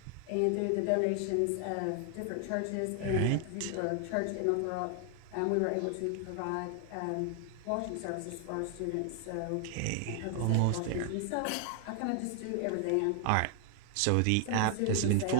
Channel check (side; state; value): both; different; correlation 0.00